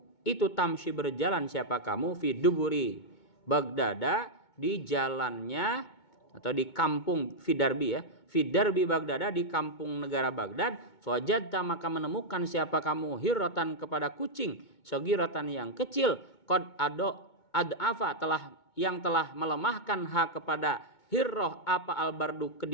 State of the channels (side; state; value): right; late; 2.2 ms